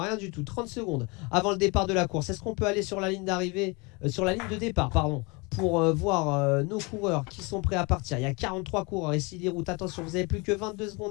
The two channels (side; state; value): right; quieter; 28.2 dB